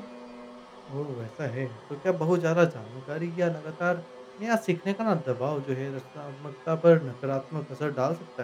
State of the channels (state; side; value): identical; both; correlation 1.00